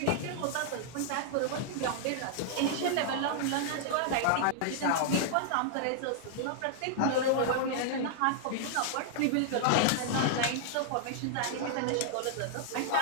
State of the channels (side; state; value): both; different; correlation -0.01